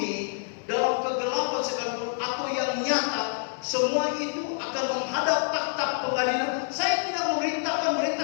dalam kegelapan sekalipun atau yang nyata, semua itu akan menghadap takhta pengadilan. Saya tidak memerintahkan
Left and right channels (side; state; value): right; silent; digital silence